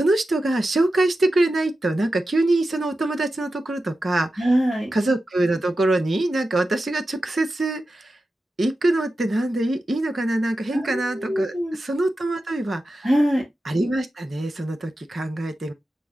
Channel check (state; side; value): normal; both; correlation 0.92